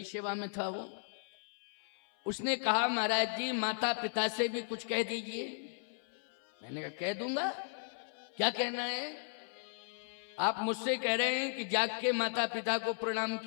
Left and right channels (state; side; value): silent; right; 54 dB below the other